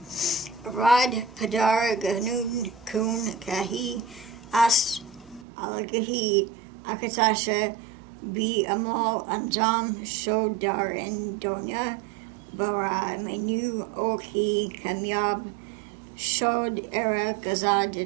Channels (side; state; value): left; drops out; at 5.5 s